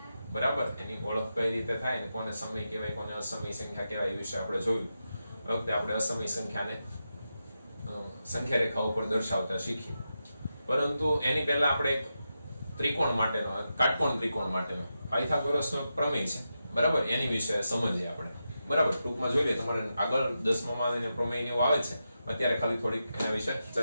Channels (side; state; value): both; inverted; correlation -0.88